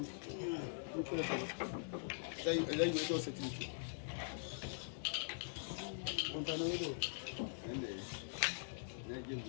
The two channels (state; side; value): silent; right; digital silence